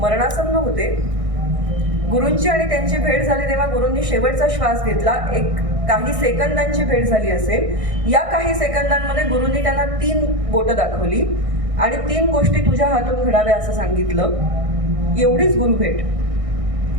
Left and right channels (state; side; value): late; left; 1.6 ms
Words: होते. गुरूंची आणि त्यांची भेट झाली तेव्हा गुरूंनी शेवटचा श्वास घेतला. एक काही सेकंदांची भेट झाली असेल. या काही सेकंदांमध्ये गुरूंनी त्यांना 3 बोटं दाखवली आणि 3 गोष्टी तुझ्या हातून घडाव्या असं सांगितलं. एवढीच गुरु भेट.